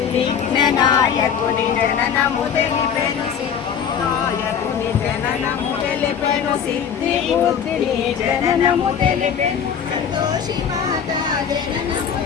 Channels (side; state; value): right; quieter; 7.7 dB